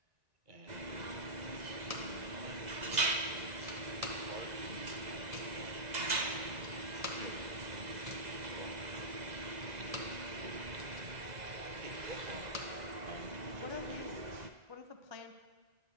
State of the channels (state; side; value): late; left; 2.0 ms